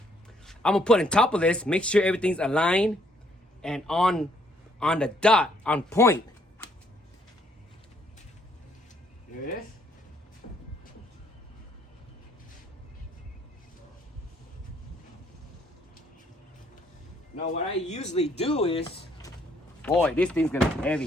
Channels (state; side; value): normal; both; correlation 0.68